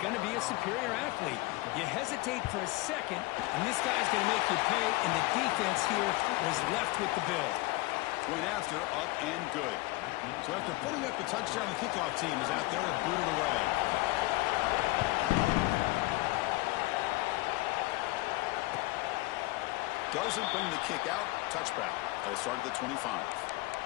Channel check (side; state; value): right; quieter; 21.3 dB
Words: to be a superior athlete. You hesitate for a second, and this guy's going to make you pay, and the defense here was left with the bill. Point after, up and good. So after putting up the touchdown, the kickoff team is out there to boot it away. Doesn't bring the kick out. Touchback. They'll start at the 25.